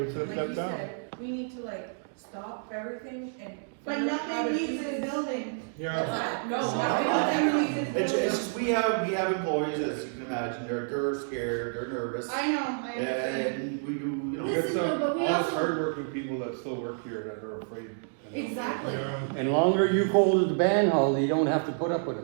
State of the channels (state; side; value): silent; left; digital silence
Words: step down. We need to like stop everything and. But figure out how to nothing do leaves the this. building. Yeah, No, Nothing leaves the It's building. just, we have employees, as you can imagine, they're scared, they're nervous. I know, I understand. And we do, you know. Listen, but we also, hardworking people that still work here that are afraid. exactly. yeah. And longer you go to the band hall, you don't have to put up with